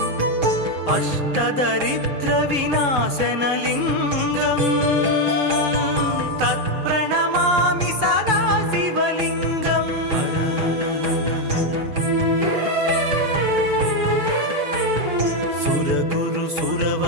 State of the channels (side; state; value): left; late; 6.6 ms